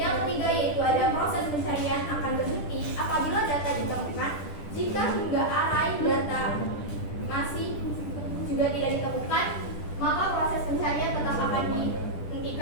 ketiga yaitu ada proses pencarian akan berhenti apabila data ditemukan. Jika hingga array data masih juga tidak ditemukan, maka proses pencarian tetap akan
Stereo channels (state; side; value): late; right; 10 ms